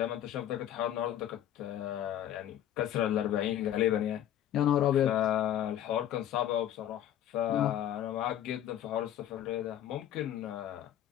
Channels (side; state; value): right; quieter; 11.3 dB